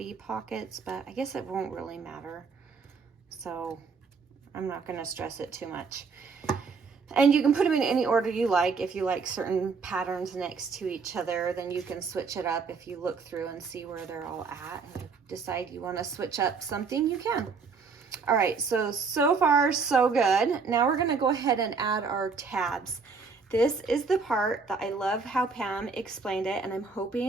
pockets, but I guess it won't really matter. So I'm not going to stress it too much. And you can put them in any order you like. If you like certain patterns next to each other, then you can switch it up. If you look through and see where they're all at and you decide you want to switch up something, you can. All right, so far so good. Now we're going to go ahead and add our tabs. This is the part that I love how Pam explained it, and I'm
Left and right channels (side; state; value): left; quieter; 4.9 dB